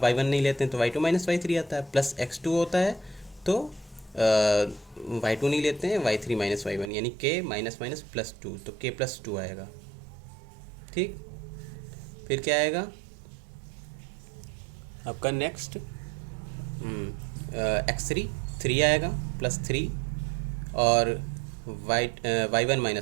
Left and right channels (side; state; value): left; drops out; at 6.9 s